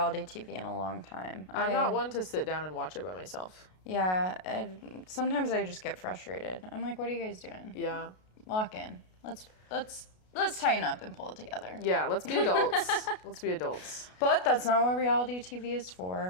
TV in a long time. I'm not one to sit down and watch it by myself. Yeah, sometimes I just get frustrated. I'm like, what are you guys doing? Yeah. Lock in. Let's tighten up and pull it together. Yeah, let's be adults. Let's be adults. But that's not what reality TV is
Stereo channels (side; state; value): right; late; 33 ms